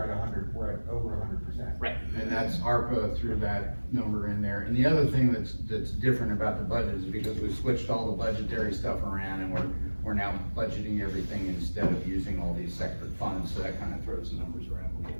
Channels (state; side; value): inverted; both; correlation -1.00